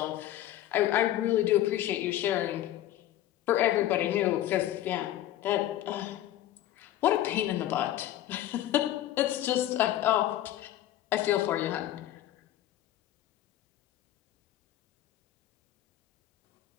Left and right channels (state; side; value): quieter; right; 13.4 dB